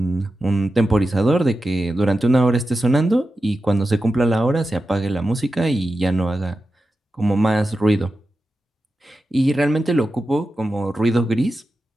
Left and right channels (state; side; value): normal; both; correlation 0.91